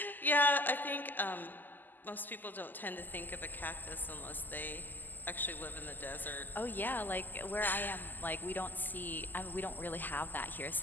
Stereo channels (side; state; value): right; late; 0.087 ms